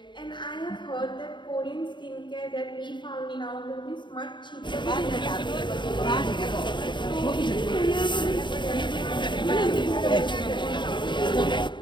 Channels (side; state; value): right; late; 0.23 ms